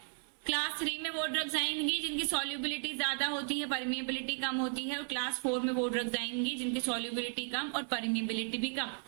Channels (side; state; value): left; silent; 55 dB below the other